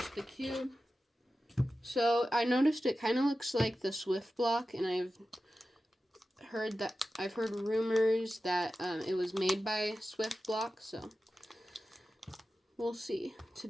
the cube. So I noticed it kind of looks like the Swift block, and I've heard rumors that it was made by Swift block, so we'll see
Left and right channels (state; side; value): normal; both; correlation 0.93